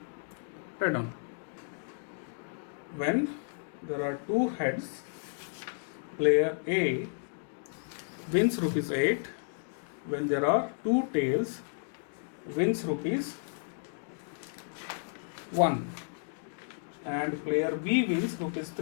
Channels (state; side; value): silent; right; digital silence